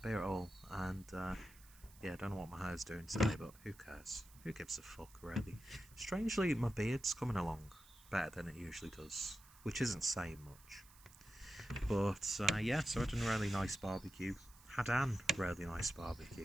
at all. And yeah, I don't know what my hair's doing today, but who cares? Who gives a fuck, really? Strangely, my beard's coming along better than it usually does, which isn't saying much. But yeah, so I had a really nice barbecue. Had an really nice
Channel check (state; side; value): noise; right; hiss, 23 dB below the sound